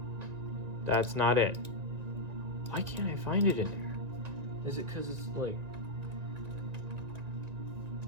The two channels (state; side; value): late; left; 1.9 ms